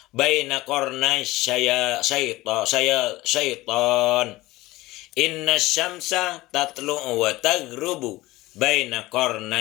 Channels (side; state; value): right; quieter; 19.0 dB